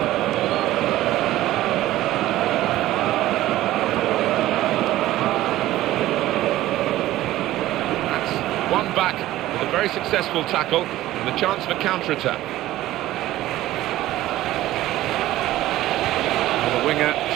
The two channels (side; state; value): left; quieter; 15.3 dB